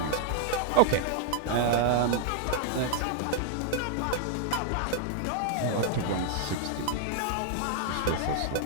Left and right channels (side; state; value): both; different; correlation -0.01